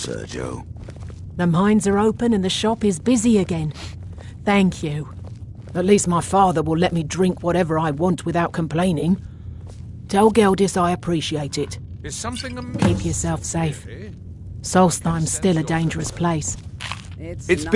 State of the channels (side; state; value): both; identical; correlation 1.00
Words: The mines are open and the shop is busy again. Thank you. At least my father will let me drink whatever I want without complaining. Tell Geldis I appreciate it. Is something amiss? Keep yourself safe. Solstheim's still a dangerous place. It's